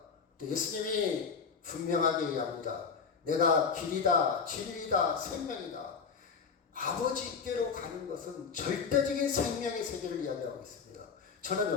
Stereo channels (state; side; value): quieter; right; 5.7 dB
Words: 예수님이 분명하게 얘기합니다. 내가 길이다, 진리다, 생명이다. 아버지께로 가는 것은 절대적인 생명의 세계를 이야기하고 있습니다.